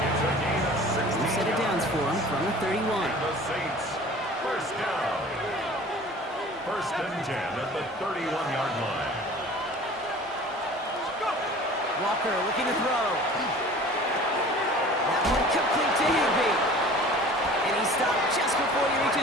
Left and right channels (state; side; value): normal; both; correlation 0.44